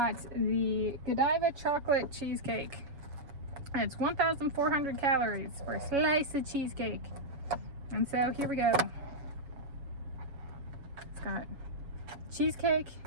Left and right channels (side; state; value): left; late; 7.2 ms